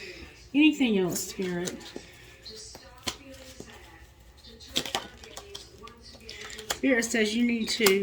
Anything else, Spirit? Spirit says you need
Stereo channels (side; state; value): both; identical; correlation 1.00